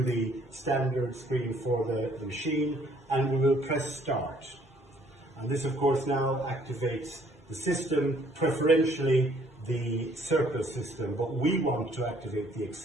the standard screen for the machine, and we will press start. And this of course now activates the system, preferentially the circle system, but we want to activate the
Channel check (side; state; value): both; normal; correlation 0.62